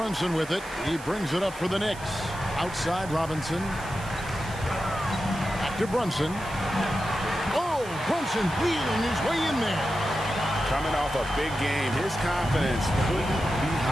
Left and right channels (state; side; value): noise; right; hiss, 18 dB below the sound